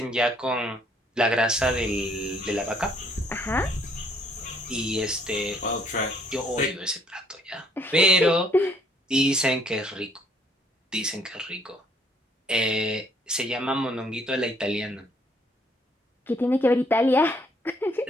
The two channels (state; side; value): normal; both; correlation 0.65